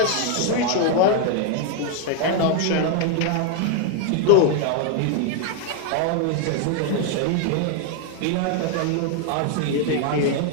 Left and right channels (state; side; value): different; both; correlation 0.00